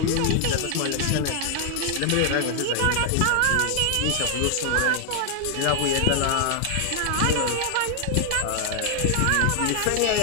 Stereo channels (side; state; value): both; different; correlation 0.00